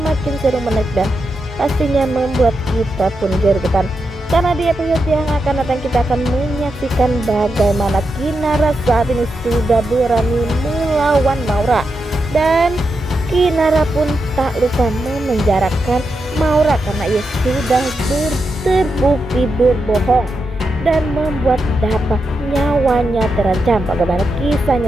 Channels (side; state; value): both; normal; correlation 0.86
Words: seru, menarik dan pastinya membuat kita pun gergetan. Karena di episode yang akan datang kita akan menyaksikan bagaimana Kinara saat ini sudah berani melawan Maura. Dan Kinara pun tak lupa memenjarakan Maura karena ia sudah terbukti berbohong dan membuat Dapa nyawanya terancam. Bagaimana